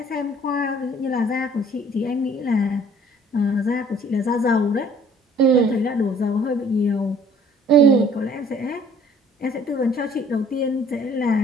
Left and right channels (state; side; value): normal; both; correlation 0.55